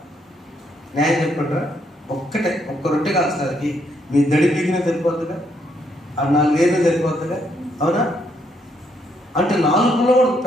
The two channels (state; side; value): normal; both; correlation 0.73